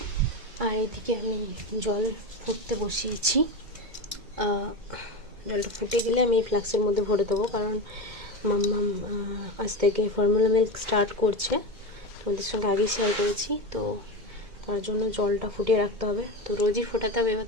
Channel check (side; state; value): left; late; 2.3 ms